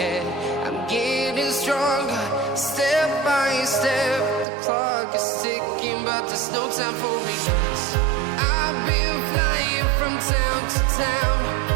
I'm getting stronger, step by step. The clock is ticking, but there's no time for regrets. I've been flying from town to town,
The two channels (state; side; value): drops out; left; at 4.5 s